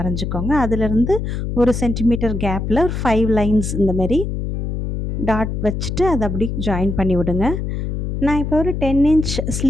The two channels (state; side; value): noise; left; hum, 3 dB below the sound